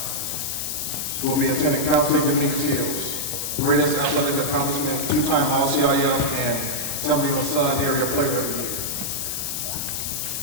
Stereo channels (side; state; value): left; noise; hiss, 2 dB below the sound